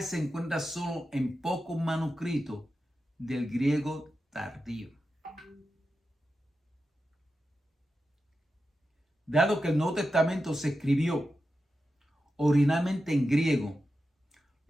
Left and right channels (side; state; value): both; normal; correlation 0.90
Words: se encuentra solo en pocos manuscritos del griego tardío. Dado que el Nuevo Testamento se escribió originalmente en griego,